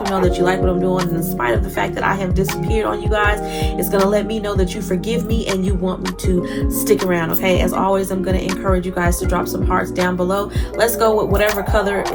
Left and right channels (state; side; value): identical; both; correlation 1.00